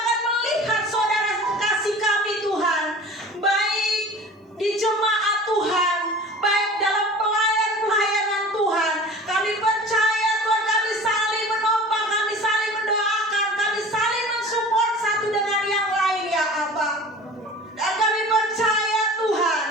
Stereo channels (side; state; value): both; normal; correlation 0.41